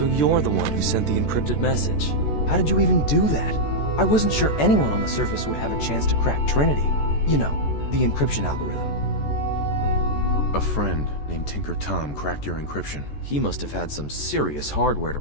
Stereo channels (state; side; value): late; right; 14 ms